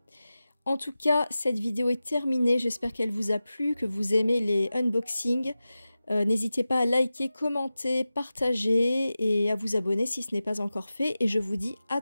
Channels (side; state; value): both; inverted; correlation -0.95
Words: En tout cas, cette vidéo est terminée. J'espère qu'elle vous a plu, que vous aimez les unboxings. N'hésitez pas à liker, commenter, partager et à vous abonner si ce n'est pas encore fait. Et je vous dis à